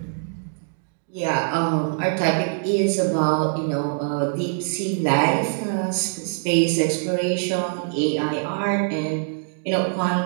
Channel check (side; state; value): left; silent; digital silence